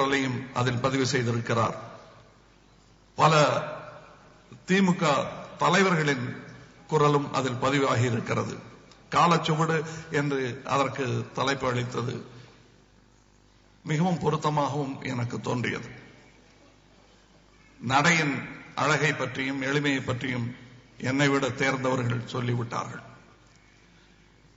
அதில் பதிவு செய்திருக்கிறார். பல திமுக தலைவர்களின் குரலும் அதில் பதிவாகி இருக்கிறது. காலச்சுவடு என்று அதற்கு தலைப்பு அளித்தது மிகவும் பொருத்தமாகவும் எனக்கு தோன்றியது. நடையின் அழகை பற்றியும் எளிமையை பற்றியும் என்னை விட தேர்ந்தவர்கள் சொல்லிவிட்டார்கள்.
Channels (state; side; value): identical; both; correlation 1.00